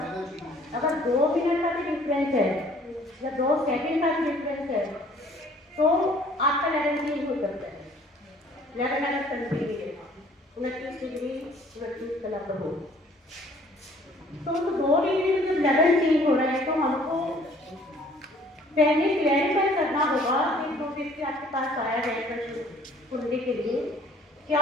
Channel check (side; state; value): both; normal; correlation 0.56